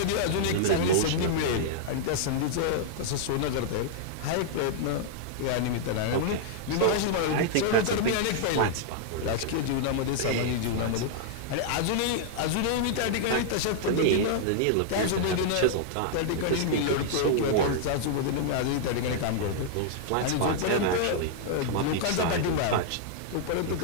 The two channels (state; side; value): different; both; correlation -0.01